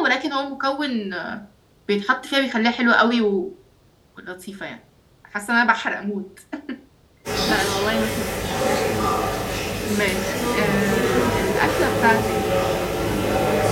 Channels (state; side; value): identical; both; correlation 1.00